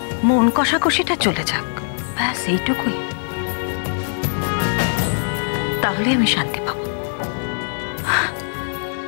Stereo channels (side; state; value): right; silent; digital silence